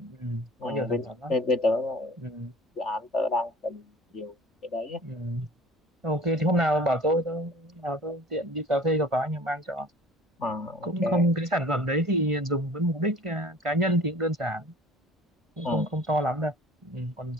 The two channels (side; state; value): both; normal; correlation 0.46